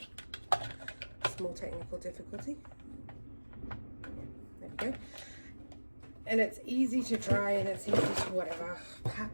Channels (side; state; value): both; inverted; correlation -1.00